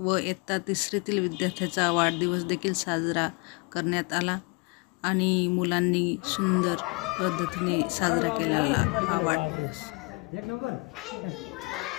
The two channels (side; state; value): right; quieter; 29.5 dB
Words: इयत्ता 3रीतील विद्यार्थ्याचा वाढदिवस देखील साजरा करण्यात आला आणि मुलांनी सुंदर पद्धतीने साजरा केलेला हा वाढदिवस. एक नंबर.